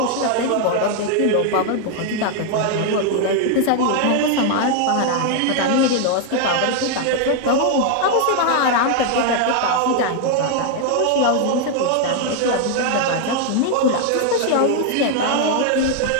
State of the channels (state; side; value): different; both; correlation 0.00